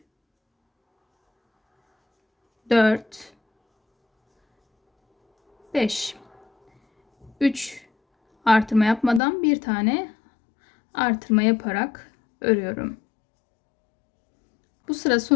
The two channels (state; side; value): drops out; right; at 9.2 s